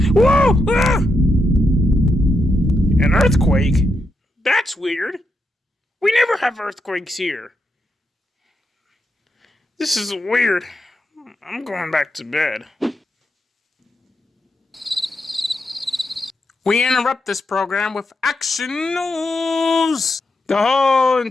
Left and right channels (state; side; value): normal; both; correlation 0.83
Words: Whoa! Ah! An earthquake? That's weird. We never have earthquakes here. This is weird. I'm going back to bed. We interrupt this program with action news. The whole